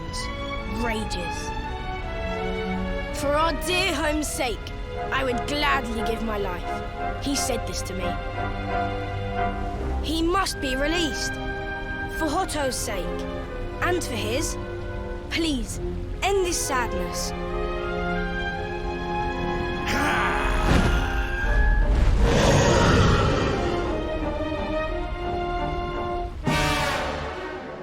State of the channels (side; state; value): both; identical; correlation 1.00